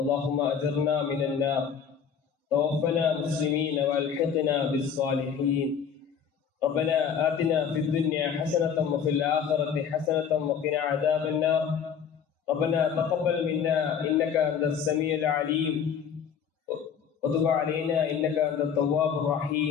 اللهم أجرنا من النار. توفنا مسلمين والحقنا بالصالحين. ربنا آتنا في الدنيا حسنة وفي الآخرة حسنة وقنا عذاب النار. ربنا تقبل منا إنك أنت السميع العليم وتب علينا إنك أنت التواب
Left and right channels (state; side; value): quieter; right; 7.3 dB